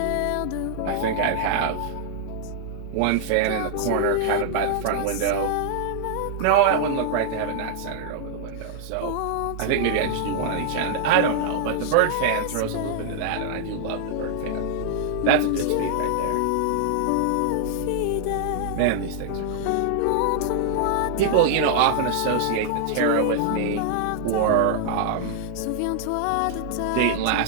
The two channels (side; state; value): both; different; correlation -0.01